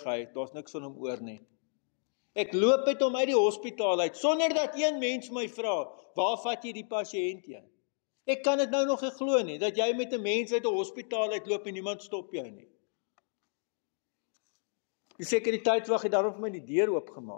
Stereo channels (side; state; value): right; silent; digital silence